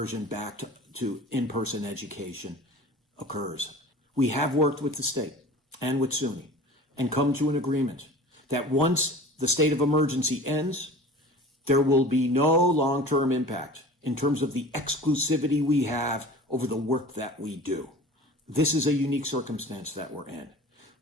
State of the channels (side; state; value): both; normal; correlation 0.40